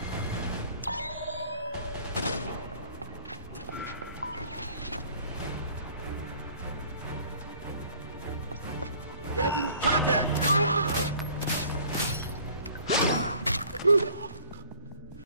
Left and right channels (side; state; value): both; inverted; correlation -0.53